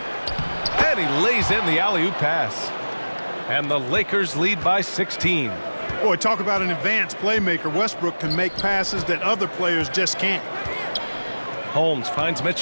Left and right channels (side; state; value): both; inverted; correlation -1.00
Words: And he lays in the alley-oop pass. And the Lakers lead by 16. Boy, talk about an advanced playmaker. Westbrook can make passes that other players just can't. Holmes finds